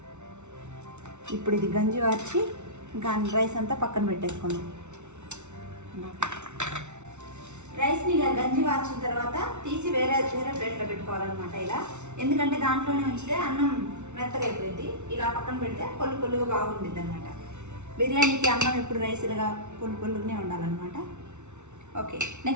ఇప్పుడు ఇది గంజి వార్చి ఇంకా రైస్ అంతా పక్కన పెట్టేసుకున్నాం. రైస్ని ఇలా గంజి వార్చిన తర్వాత తీసి వేరే ప్లేట్లో పెట్టుకోవాలన్నమాట ఇలా. ఎందుకంటే దాంట్లోనే ఉంచితే అన్నం మెత్తగా అయిపోయింది. ఇలా పక్కన పెడితే పొల్లుగా బాగుంటుంది అనమాట. బిర్యానీకి అన్నం ఎప్పుడు రైస్ ఇలాగా పొల్లుగానే ఉండాలన్నమాట. ఓకే,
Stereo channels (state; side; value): late; left; 0.83 ms